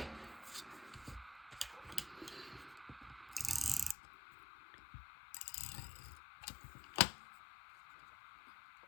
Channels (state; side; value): drops out; right; at 4.0 s